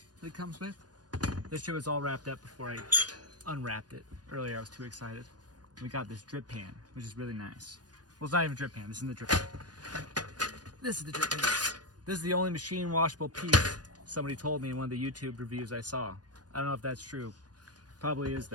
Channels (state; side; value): late; left; 0.69 ms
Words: that it comes with. This shit was all wrapped up before I unwrapped it. Earlier I was too excited. We got this drip pan, which is really nice. Well, it's not even a drip pan, this isn't the drip pan. This is the drip pan. This is the only machine washable piece somebody told me in one of the YouTube reviews I saw. I don't know if that's true. Probably is